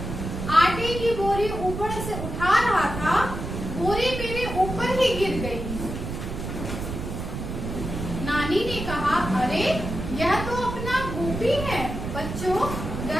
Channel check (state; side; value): noise; right; rumble, 6 dB below the sound